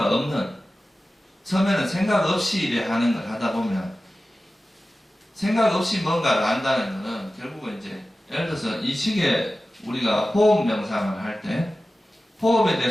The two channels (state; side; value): normal; both; correlation 0.95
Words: 없는, 처음에는 생각 없이 이래 하는 걸 하다 보면 생각 없이 뭔가를 한다는 것은 결국은 이제 예를 들어서 이 시기에 우리가 호흡 명상을 할 때 호흡에